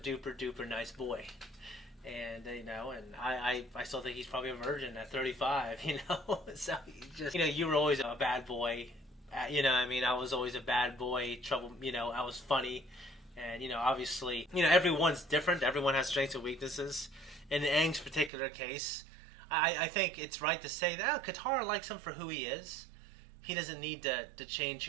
duper nice boy. And, and I still think he's probably a virgin at 35, So, you were always a bad boy. I was always a bad boy, trouble, I was funny. And, obviously, everyone's different. Everyone has strengths and weaknesses. In Aang's particular case, I think it's right to say that Katara likes him for who he is. He doesn't need to change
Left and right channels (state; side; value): drops out; left; at 18.3 s